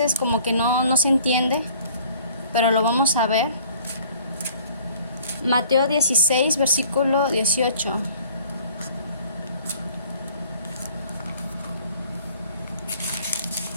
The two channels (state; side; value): inverted; both; correlation -0.54